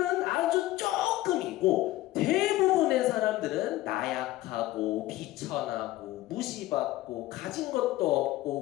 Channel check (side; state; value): right; quieter; 16.6 dB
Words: 아주 조금이고 대부분의 사람들은 나약하고 비천하고 무시받고 가진 것도